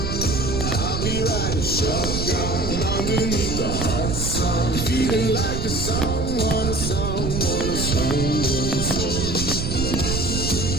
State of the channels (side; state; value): right; noise; rumble, 3 dB below the sound